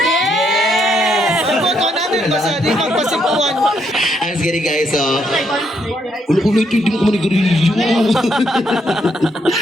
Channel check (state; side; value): normal; both; correlation 0.75